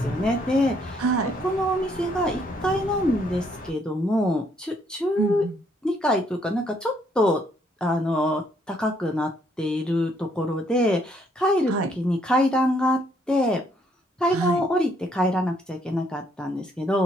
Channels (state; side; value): normal; both; correlation 0.69